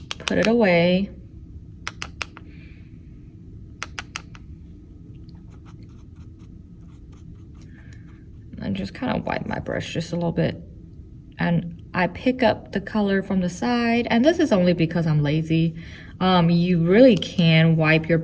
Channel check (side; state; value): both; identical; correlation 1.00